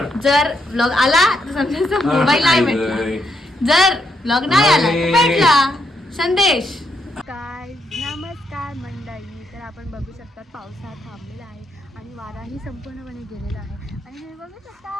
जर ब्लॉग आला तर समजायचं मोबाईल नाही भेटला, जर ब्लॉग नाही आला तर भेटला संदेश. काय नमस्कार मंडळी. तर आपण बघू शकता पावसाळा थांबलेला आहे आणि वाराही संपूर्णपणे गेलेला आहे आणि हे बघू शकता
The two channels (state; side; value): normal; both; correlation 0.78